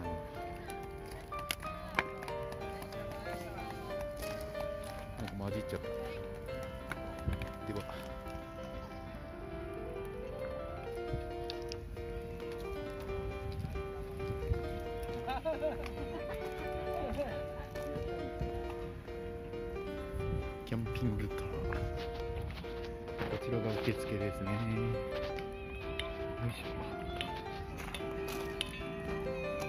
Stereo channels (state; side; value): identical; both; correlation 1.00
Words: なんか混じっちゃった。ではキャンピングカー、こちらが受付ですね。よいしょ。